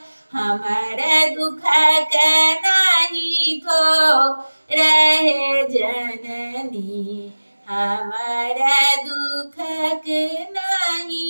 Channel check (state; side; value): inverted; both; correlation -1.00